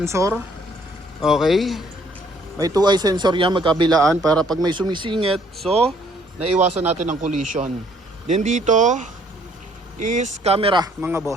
Okay. May 2-eye sensor yan magkabilaan para pag may sumisingit, so naiwasan natin ang collision. Then dito is camera mga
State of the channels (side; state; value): both; normal; correlation 0.63